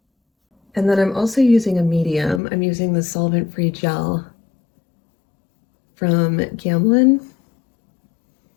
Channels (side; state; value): right; drops out; at 2.4 s